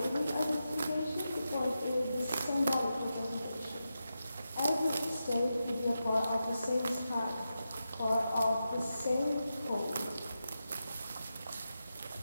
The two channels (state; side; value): inverted; both; correlation -0.89